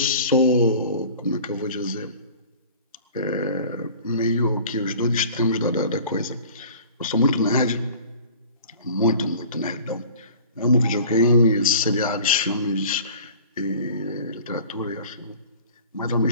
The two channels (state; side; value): inverted; both; correlation -0.44